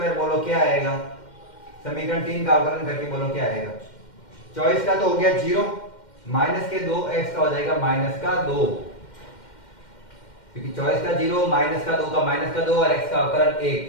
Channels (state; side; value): late; right; 2.1 ms